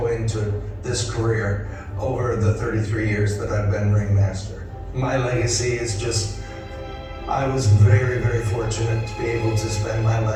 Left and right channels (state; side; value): identical; both; correlation 1.00